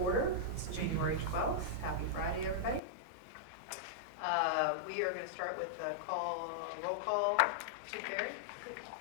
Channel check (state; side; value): drops out; right; at 2.8 s